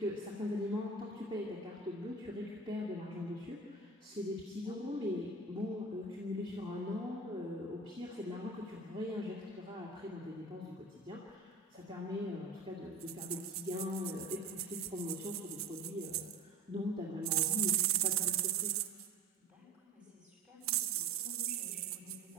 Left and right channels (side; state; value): left; quieter; 3.5 dB